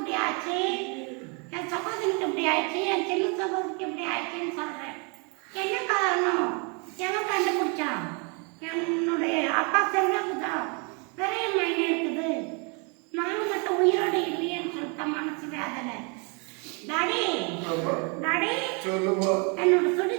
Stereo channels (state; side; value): quieter; left; 34.4 dB